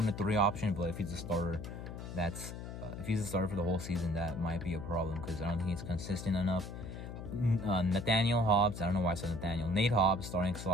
3 option, but if he's a starter, if he's a starter for the whole season, that might be a problem because I don't think he's consistent enough. Nathaniel Hobbs, I don't know why I said Nathaniel. Nate Hobbs, starting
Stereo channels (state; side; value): noise; left; hum, 9 dB below the sound